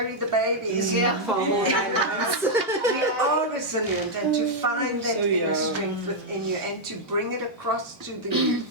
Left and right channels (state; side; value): normal; both; correlation -0.03